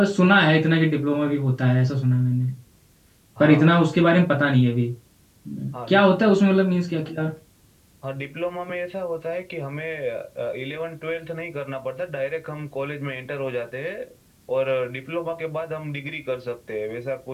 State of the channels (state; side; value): identical; both; correlation 1.00